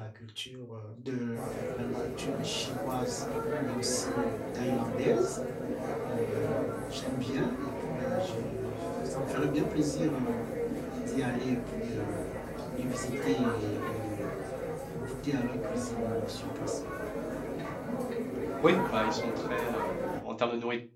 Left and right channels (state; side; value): identical; both; correlation 1.00